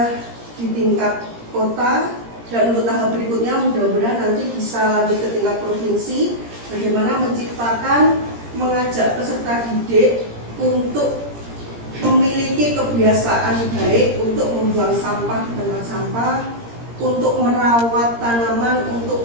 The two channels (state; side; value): late; left; 17 ms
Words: di tingkat kota, dan untuk tahap berikutnya mudah-mudahan nanti bisa lanjut ke tingkat provinsi, bagaimana menciptakan, mengajak peserta didik untuk memiliki kebiasaan baik untuk membuang sampah di tempat sampah, untuk merawat tanaman,